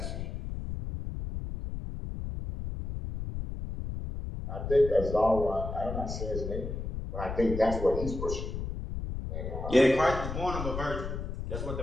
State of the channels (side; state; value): left; noise; rumble, 5 dB below the sound